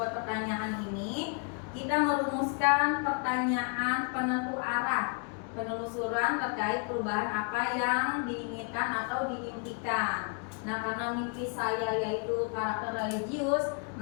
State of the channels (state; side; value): quieter; right; 38.1 dB